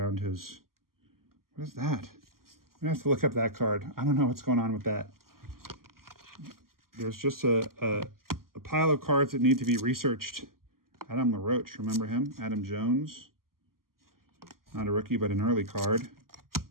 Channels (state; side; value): late; left; 0.92 ms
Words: his... What is that? I'm going to have to look up that card. I don't know what's going on with that. There's just a pile of cards that need to be researched. Adam LaRoche, remember him? Adam Jones. Not a rookie, but an early card.